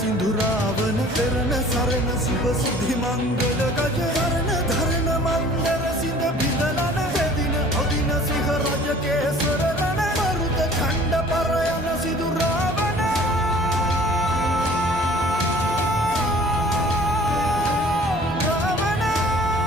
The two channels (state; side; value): normal; both; correlation 0.50